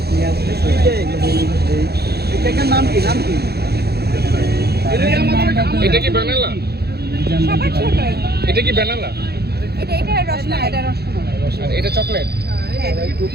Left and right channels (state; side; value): late; left; 0.47 ms